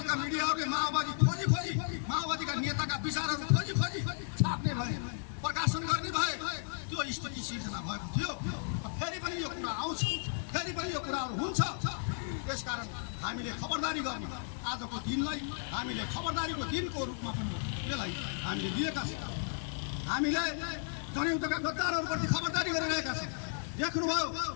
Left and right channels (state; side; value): silent; right; 55 dB below the other